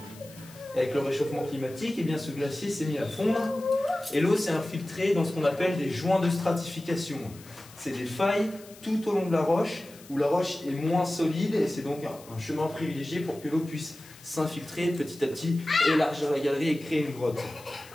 Avec le réchauffement climatique, eh bien, ce glacier s'est mis à fondre et l'eau s'est infiltrée dans ce qu'on appelle des joints de stratification. C'est des failles tout au long de la roche où la roche est moins solide et c'est donc un chemin privilégié pour que l'eau puisse s'infiltrer petit à petit, élargir la galerie et créer une grotte.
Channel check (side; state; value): left; noise; hiss, 21 dB below the sound